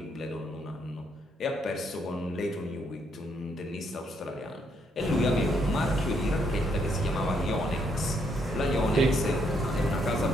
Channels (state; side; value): normal; both; correlation 0.74